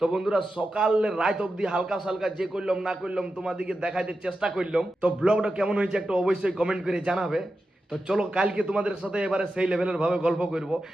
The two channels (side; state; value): both; normal; correlation 0.91